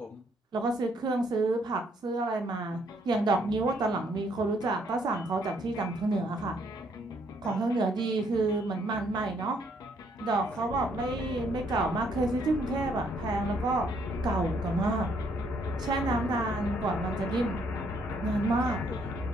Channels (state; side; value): normal; both; correlation 0.69